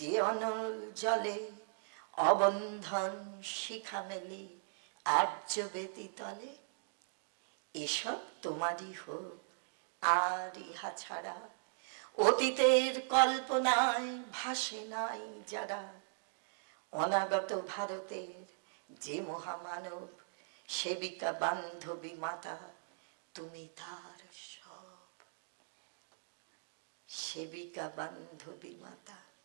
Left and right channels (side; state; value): left; silent; digital silence